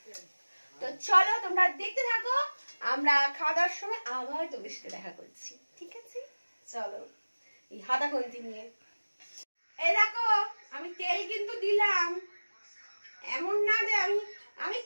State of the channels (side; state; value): both; inverted; correlation -1.00